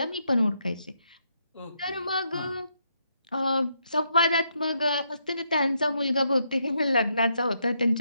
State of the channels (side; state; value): both; inverted; correlation -0.77